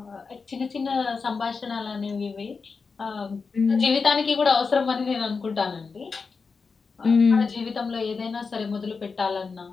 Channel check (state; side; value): quieter; right; 4.8 dB